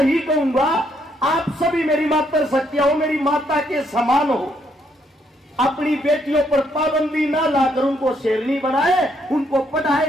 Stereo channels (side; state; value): both; normal; correlation 0.73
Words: कहूंगा, आप सभी मेरी मातृ शक्तियां हो, मेरी माता के समान हो। अपनी बेटियों पर पाबंदी ना लाकर उनको शेरनी बनाए, उनको